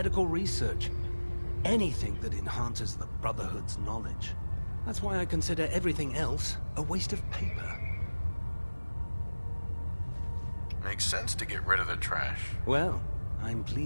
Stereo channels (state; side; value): inverted; both; correlation -1.00